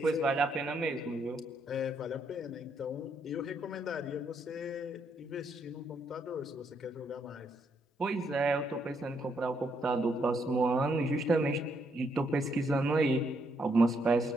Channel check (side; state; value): both; normal; correlation 0.75